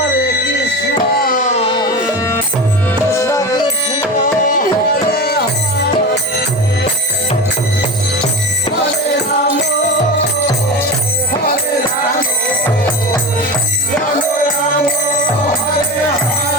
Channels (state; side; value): normal; both; correlation 0.26